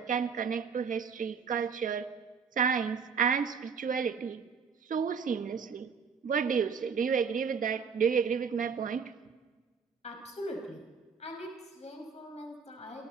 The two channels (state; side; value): quieter; left; 6.1 dB